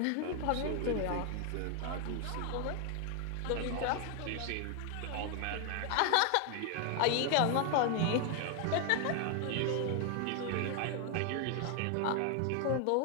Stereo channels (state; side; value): different; both; correlation 0.00